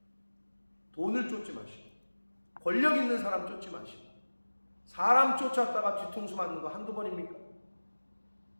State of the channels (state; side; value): inverted; both; correlation -1.00